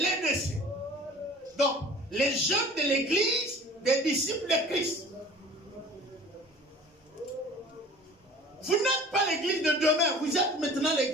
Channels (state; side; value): normal; both; correlation 0.44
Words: Donc, les jeunes de l'église des disciples de Christ. Vous n'êtes pas l'église de demain, vous êtes maintenant